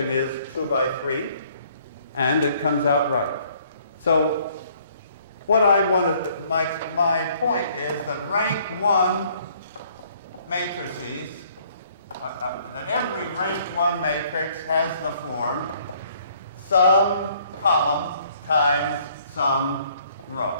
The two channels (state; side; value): inverted; both; correlation -0.62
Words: is 2 by 3. And it comes out right. So what I want to, my point is that rank 1 matrices, that every rank 1 matrix has the form some column times some row.